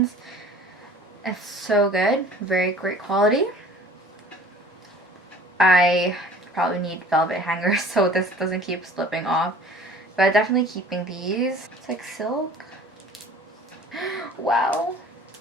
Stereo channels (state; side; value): normal; both; correlation 0.47